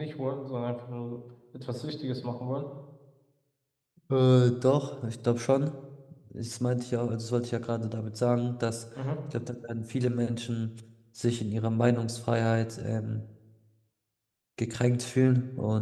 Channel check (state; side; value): identical; both; correlation 1.00